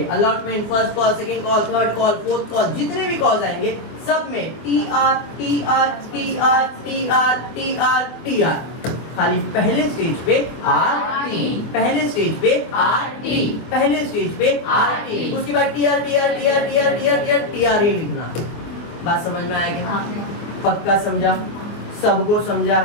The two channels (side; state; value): right; late; 24 ms